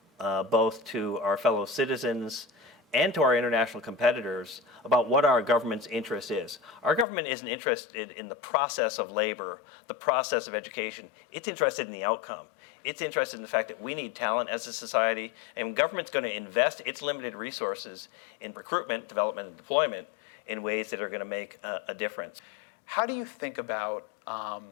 both to our fellow citizens and to our international competitors about what our government's interest is. Our government isn't interested in the process of labor, the process of education. It's interested in the outcome. It's interested in the fact that we need talent as a society, and government's going to invest its limited resources in recruitment, development, and deployment in ways that are going to make a difference. How do you think about,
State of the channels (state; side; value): drops out; right; at 7.1 s